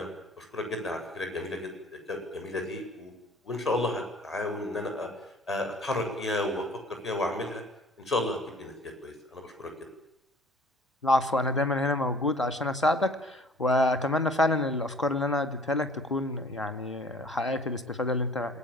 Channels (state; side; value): normal; both; correlation 0.51